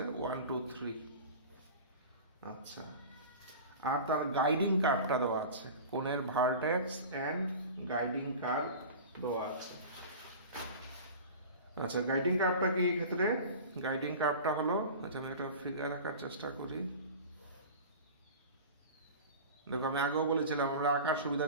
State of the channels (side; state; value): both; inverted; correlation -0.35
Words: 1 2 3। আচ্ছা, আর তার গাইডিং কার্ভটা দেওয়া আছে, কোণের ভার্টেক্স এন্ড গাইডিং কার্ভ দেওয়া আছে। আচ্ছা, গাইডিং কার্ভটা কি এই ক্ষেত্রে? গাইডিং কার্ভটা হলো, আচ্ছা আমি একটা ফিগার আঁকার চেষ্টা করি। দেখো, আমি আগেও বলেছিলাম আমরা আঁকার